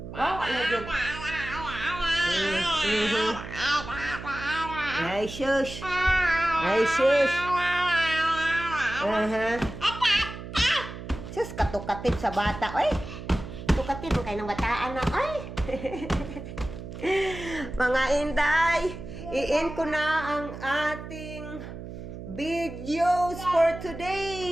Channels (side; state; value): right; noise; hum, 11 dB below the sound